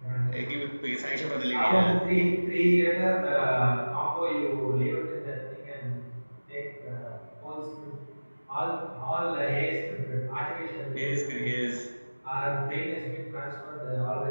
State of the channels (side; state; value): both; inverted; correlation -1.00